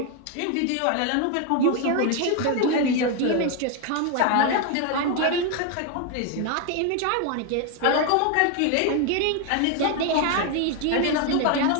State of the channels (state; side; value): different; both; correlation 0.01